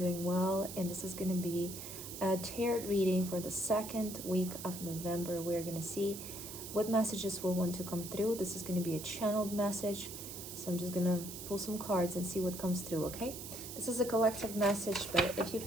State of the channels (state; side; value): noise; right; hiss, 10 dB below the sound